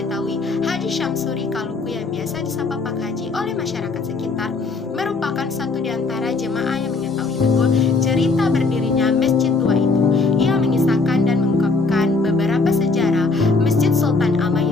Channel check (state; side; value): quieter; right; 3.9 dB